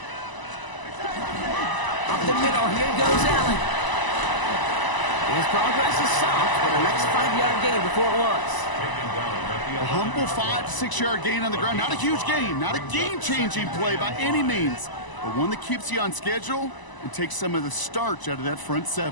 Up the middle. Here goes Allen. His progress is soft, but a nice 5-yard gain before it was. A humble 5 to 6 yard gain on the ground. Not a huge gain, not a game-changing play by any means, but one that keeps you on schedule and takes some of the starch out of that front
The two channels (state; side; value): late; right; 1.0 ms